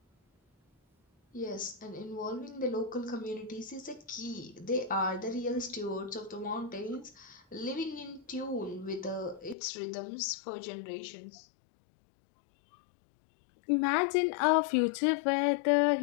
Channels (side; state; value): right; drops out; at 9.6 s